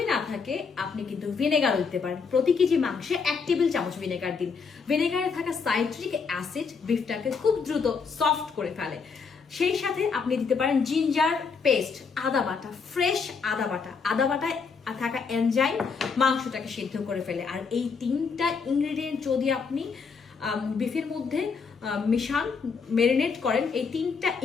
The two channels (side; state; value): right; quieter; 5.3 dB